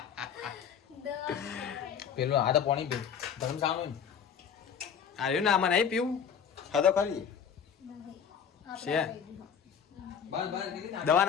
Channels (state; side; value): quieter; right; 7.7 dB